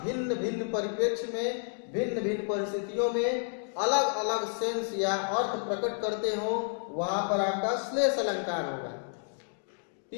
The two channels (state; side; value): silent; right; digital silence